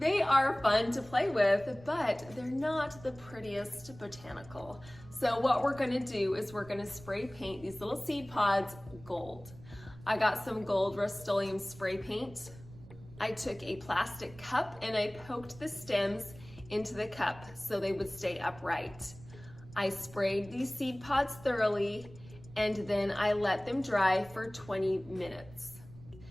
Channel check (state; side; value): noise; right; rumble, 19 dB below the sound